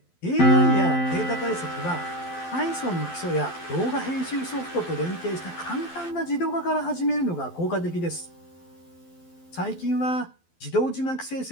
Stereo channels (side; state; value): right; late; 12 ms